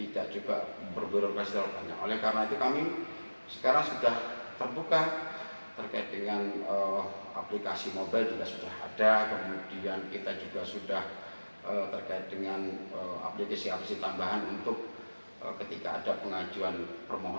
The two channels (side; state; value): both; inverted; correlation -1.00